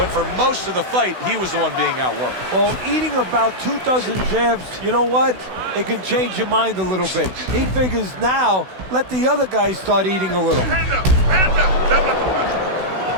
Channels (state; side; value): late; left; 16 ms